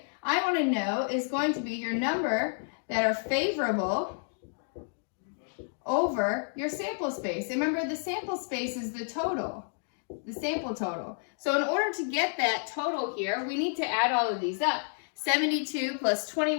I want to know is going to be your number that are favorable over your sample space. Remember, the sample space is the total, the sample total. So in order to get that total here, we need to add all of these up. 72 plus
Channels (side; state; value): right; silent; 58 dB below the other